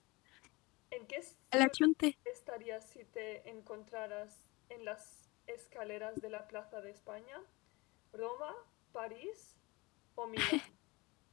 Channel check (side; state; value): right; quieter; 24.3 dB